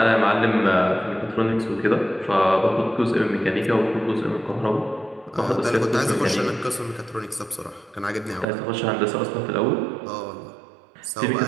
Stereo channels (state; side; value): drops out; left; at 8.5 s